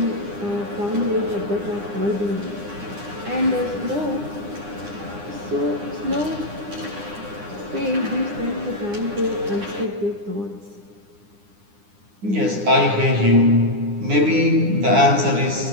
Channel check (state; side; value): late; left; 9.8 ms